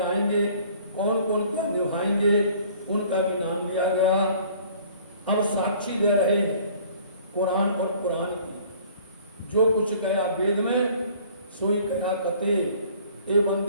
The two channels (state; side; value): inverted; both; correlation -0.53